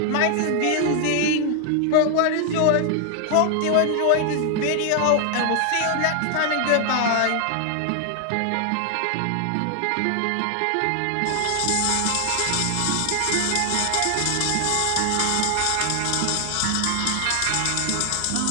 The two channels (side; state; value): both; different; correlation 0.00